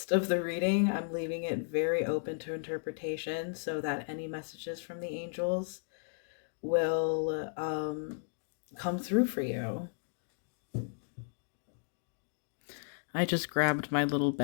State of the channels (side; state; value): right; silent; digital silence